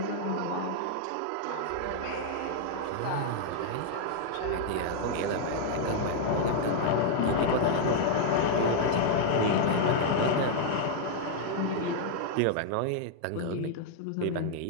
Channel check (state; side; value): different; both; correlation 0.00